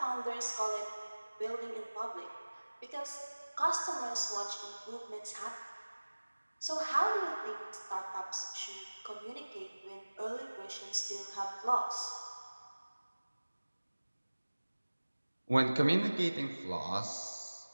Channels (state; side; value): inverted; both; correlation -1.00